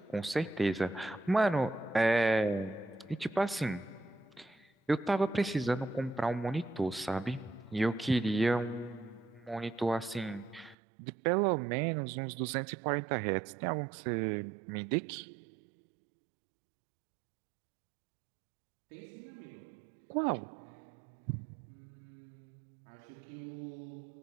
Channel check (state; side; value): drops out; left; at 10.8 s